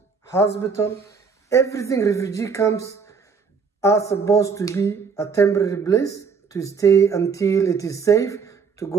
hospital, everything. Refugee camps are supposed to be a temporary place to stay until it is safe to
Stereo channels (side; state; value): left; quieter; 5.5 dB